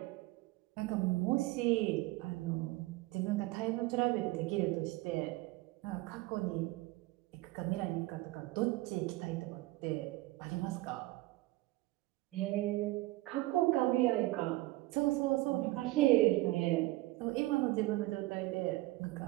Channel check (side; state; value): left; quieter; 19.5 dB